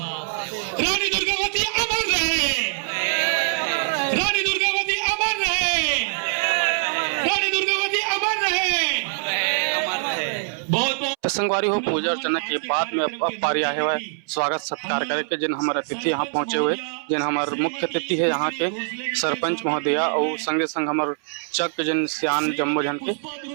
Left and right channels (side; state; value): left; silent; 63 dB below the other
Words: रानी दुर्गावती अमर रहे, रानी दुर्गावती अमर रहे, रानी दुर्गावती अमर रहे। तो संगवारी हो पूजा अर्चना के बाद में अब पारी आए हुए स्वागत सत्कार करके जिन हमारे अतिथि यहाँ पहुँचे हुए, जिन हमारे मुख्य अतिथि है यहाँ के सरपंच महोदया और संगे संग हमारे चक जिन सियान जम्मो जन के